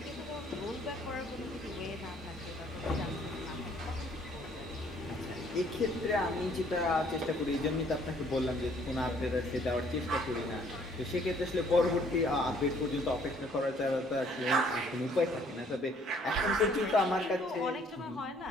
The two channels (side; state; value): both; normal; correlation 0.61